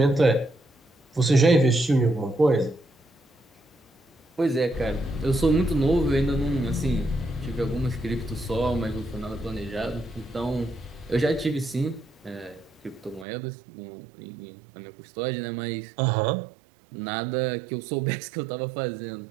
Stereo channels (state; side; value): drops out; left; at 13.2 s